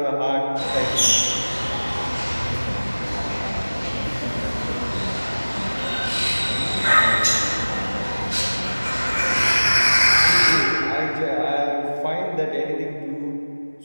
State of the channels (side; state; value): both; inverted; correlation -1.00